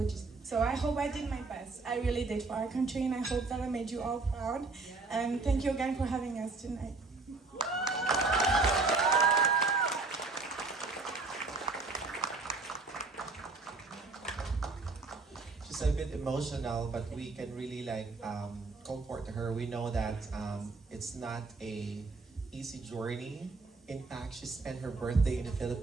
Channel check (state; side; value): quieter; left; 3.9 dB